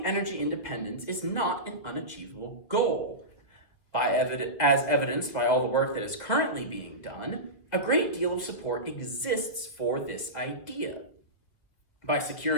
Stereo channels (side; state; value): right; late; 1.9 ms